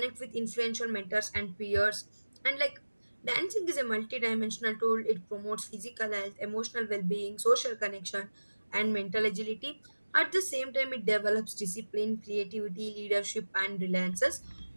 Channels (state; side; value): inverted; both; correlation -1.00